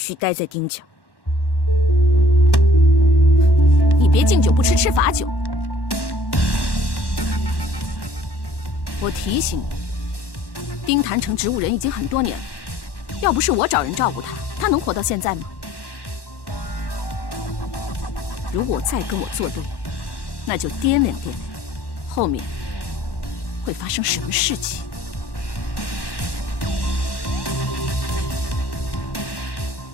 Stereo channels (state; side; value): late; right; 1.1 ms